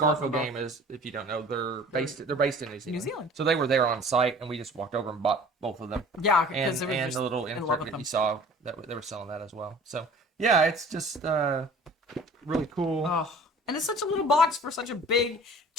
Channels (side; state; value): both; normal; correlation 0.46